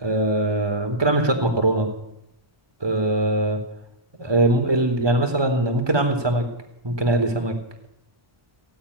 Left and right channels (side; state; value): left; late; 1.2 ms